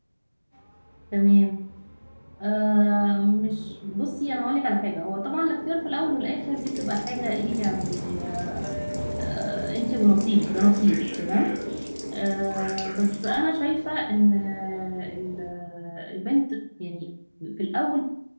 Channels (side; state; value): both; inverted; correlation -1.00